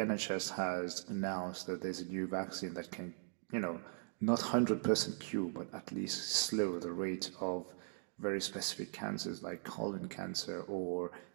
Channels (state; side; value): silent; left; digital silence